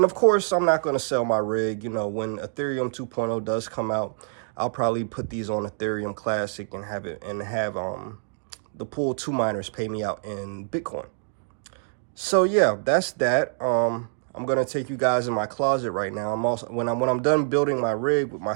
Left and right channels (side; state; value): left; silent; digital silence